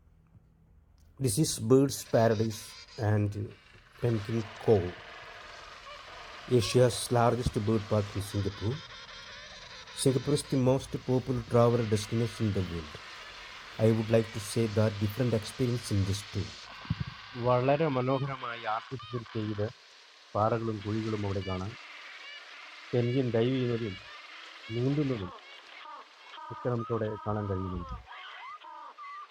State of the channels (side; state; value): both; identical; correlation 1.00